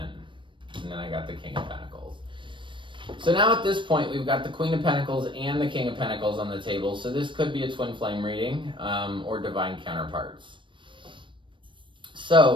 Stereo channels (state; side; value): late; left; 0.24 ms